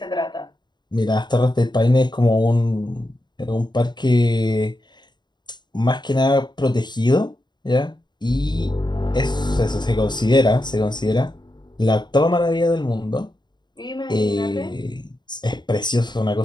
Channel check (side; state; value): right; late; 0.21 ms